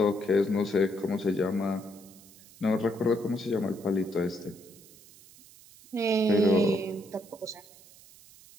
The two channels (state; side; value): noise; right; hiss, 23 dB below the sound